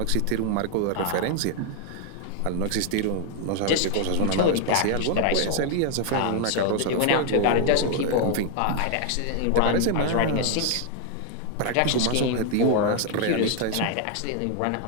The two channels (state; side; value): different; both; correlation 0.00